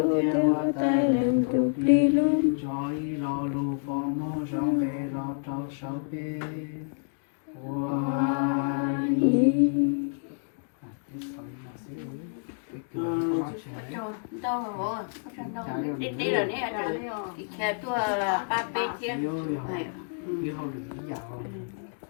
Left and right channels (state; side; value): silent; right; digital silence